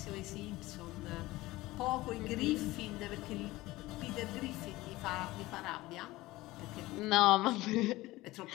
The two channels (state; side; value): quieter; right; 18.8 dB